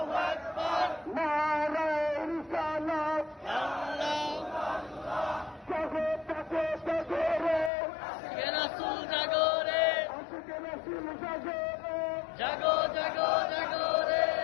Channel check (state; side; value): drops out; right; at 7.7 s